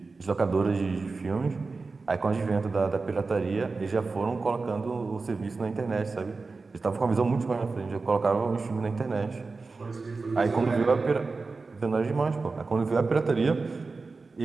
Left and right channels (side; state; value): left; quieter; 4.0 dB